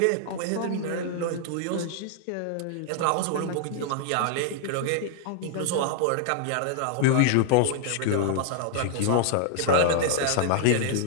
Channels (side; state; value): both; different; correlation 0.00